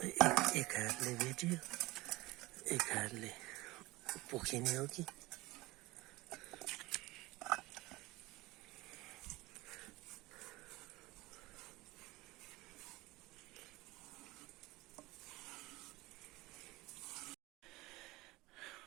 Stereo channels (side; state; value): left; quieter; 20.6 dB